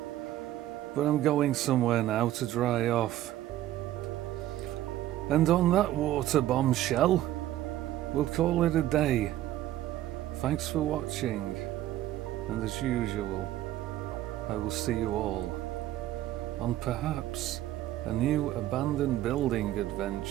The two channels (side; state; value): left; quieter; 13.9 dB